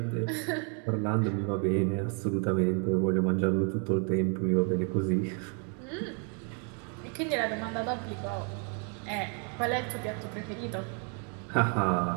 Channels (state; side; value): quieter; left; 39.8 dB